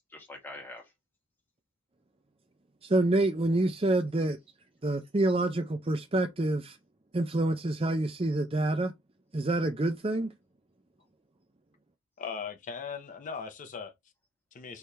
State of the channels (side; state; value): both; normal; correlation 0.73